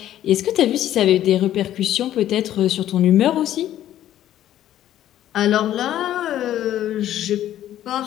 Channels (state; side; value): quieter; right; 12.2 dB